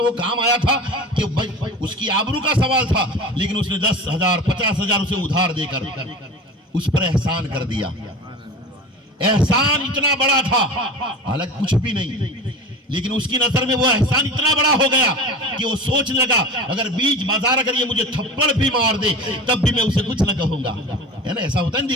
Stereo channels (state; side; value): normal; both; correlation 0.34